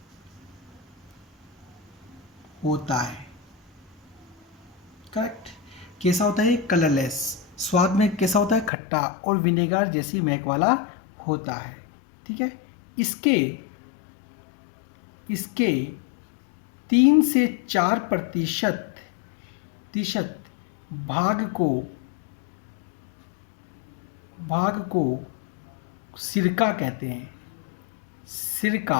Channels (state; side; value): drops out; right; at 8.7 s